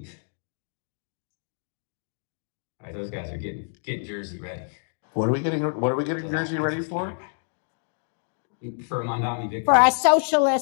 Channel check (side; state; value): right; silent; digital silence